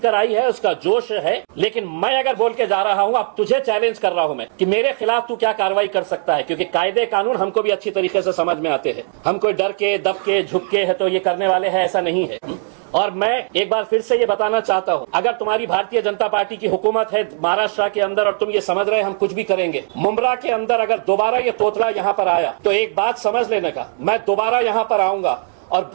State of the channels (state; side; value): silent; left; 63 dB below the other